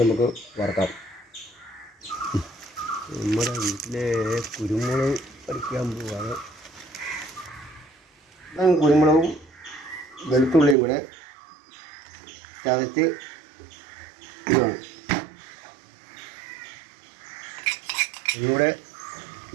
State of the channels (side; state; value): left; drops out; at 10.8 s